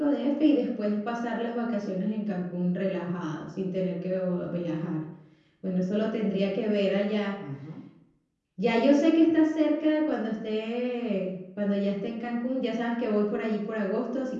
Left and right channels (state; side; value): identical; both; correlation 1.00